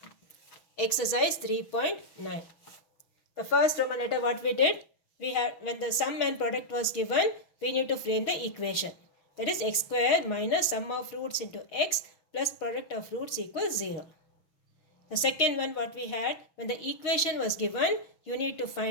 exercise 3.9. The first Roman letter what we did, we had when the sum and product was given, we need to frame the equation. That is x square minus sum of roots into x plus product of roots equals 0. The second one what we had, when the equation was given, you need to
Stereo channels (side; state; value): right; late; 6.2 ms